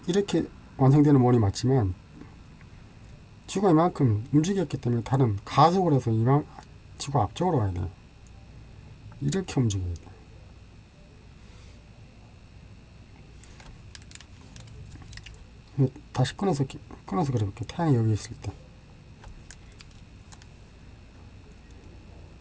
이렇게 완성되는 원이 맞지만 지구가 이만큼 움직였기 때문에 달은 가속을 해서 지구 앞쪽으로 가야 돼요. 이렇게 움직여야 돼요. 다시 끊어서 그려볼게요. 태양이 여기 있을 때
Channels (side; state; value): both; identical; correlation 1.00